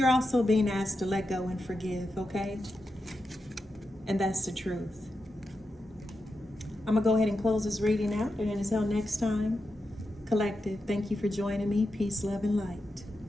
also being asked to let go and forgive, okay? And that's the truth. I'm going to go ahead and close this reading out. And until next time, Collective, thank you for joining me. Peace, love, and light.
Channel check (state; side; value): normal; both; correlation 0.88